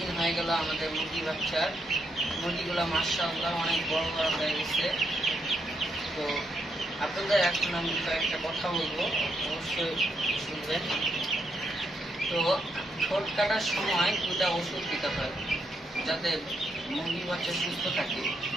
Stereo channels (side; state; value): both; normal; correlation 0.79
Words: হয়ে গেল আমাদের মুরগিগুলো মাশাআল্লাহ অনেক বড় বড় হয়ে গেছে। তো আপনাদের এখন আমি কয়েকটা কথা বলবো, অবশ্যই শুনবেন। তো ঠোঁট কাটার সময় দুটা ওষুধ দিতে হয় যাতে মুরগি বাচ্চা সুস্থ থাকে।